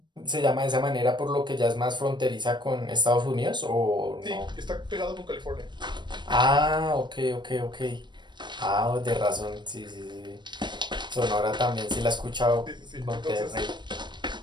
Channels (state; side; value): late; left; 0.22 ms